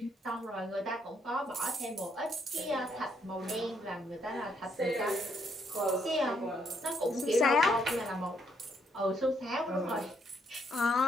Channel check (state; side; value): normal; both; correlation 0.73